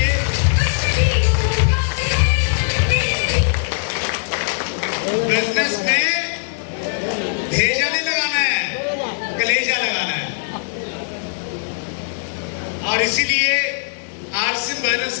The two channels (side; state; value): right; silent; digital silence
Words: बिजनेस में भेजा नहीं लगाना है, कलेजा लगाना है। और इसीलिए आरसीएम बिजनेस